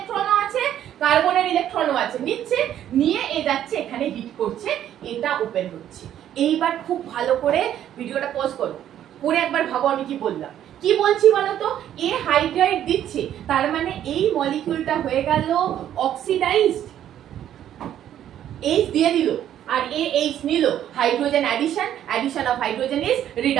আছে কার্বনের ইলেকট্রনও আছে, নিচ্ছে নিয়ে এ যাচ্ছে এখানে হিট করছে, এটা ওপেন হচ্ছে। এইবার খুব ভালো করে ভিডিওটা পজ করো, করে একবার ভাবো আমি কি বললাম। কি বলছি বলতো, এ হাইড্রাইড দিচ্ছে, তার মানে এই মলিকিউলটা হয়ে গেল অক্সিডাইজড, এইচ দিয়ে দিল, আর এ এইচ নিল, hydrogen addition of hydrogen is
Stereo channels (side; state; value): left; quieter; 11.0 dB